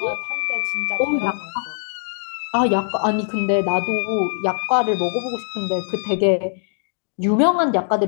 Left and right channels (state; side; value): silent; right; digital silence